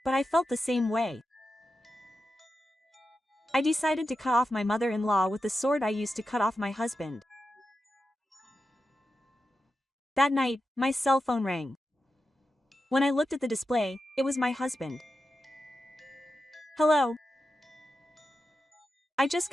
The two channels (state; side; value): normal; both; correlation 0.90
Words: but I felt the same way. I decided to cut off my mother-in-law with the sword I used to cut off my husband. That night, my cell phone rang. When I looked at the display, it was my husband. Hello. I just